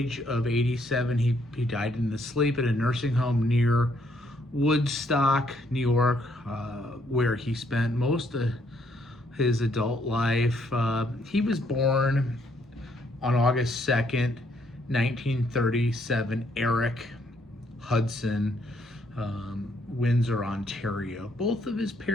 of 87. He died in his sleep at a nursing home near Woodstock, New York, where he spent most of his adult life. He was born on August 2nd, 1937, Eric Hudson, Windsor, Ontario. Both of his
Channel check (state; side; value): normal; both; correlation 0.70